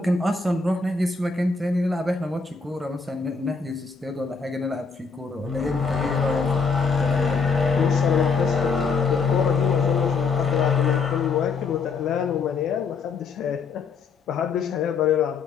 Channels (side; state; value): right; quieter; 4.8 dB